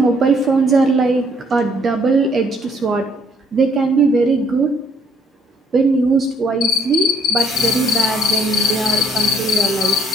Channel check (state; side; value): normal; both; correlation 0.64